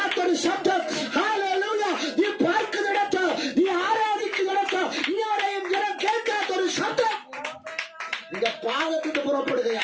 ശബ്ദം. ഹല്ലേലൂയ. നീ പാർക്കുന്നിടത്ത്, നീ ആരാധിക്കുന്നിടത്ത് ഇതുവരെയും ജനം കേൾക്കാത്തൊരു ശബ്ദം നിന്റെ പാദത്തിന്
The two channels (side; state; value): both; identical; correlation 1.00